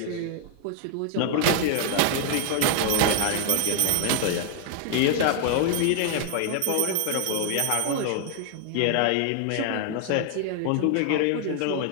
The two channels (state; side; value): different; both; correlation 0.00